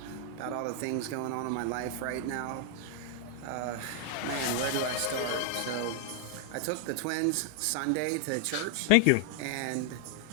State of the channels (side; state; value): both; different; correlation 0.00